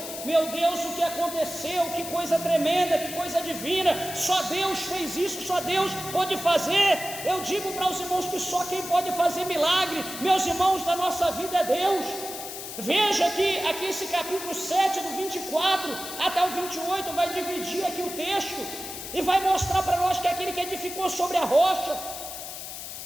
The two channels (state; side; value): noise; left; hiss, 9 dB below the sound